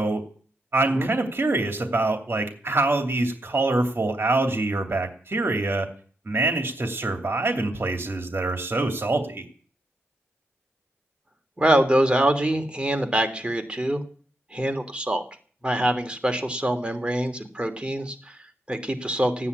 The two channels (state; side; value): normal; both; correlation 0.81